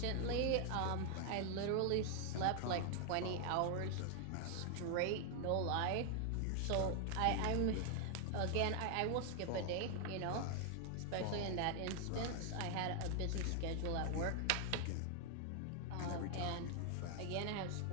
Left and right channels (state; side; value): different; both; correlation 0.00